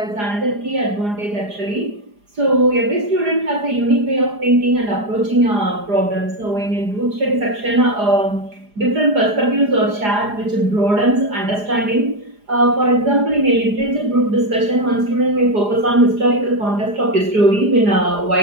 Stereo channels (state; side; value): late; left; 4.9 ms